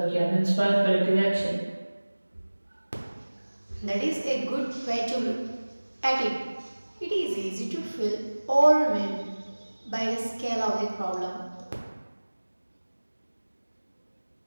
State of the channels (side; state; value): both; inverted; correlation -1.00